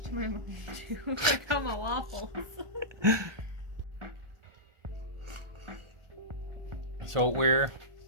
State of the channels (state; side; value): late; left; 1.2 ms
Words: to my mom too. Like I'm a waffles. So we're